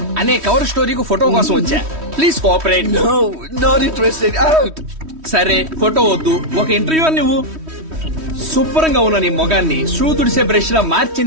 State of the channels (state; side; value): late; left; 3.1 ms